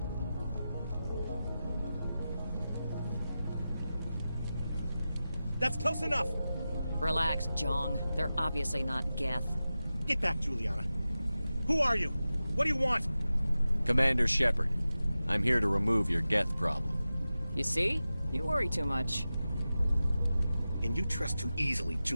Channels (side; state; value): both; inverted; correlation -0.94